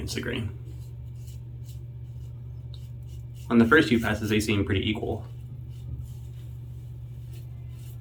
the grain. On the first few passes, they seem pretty equal.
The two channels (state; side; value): identical; both; correlation 1.00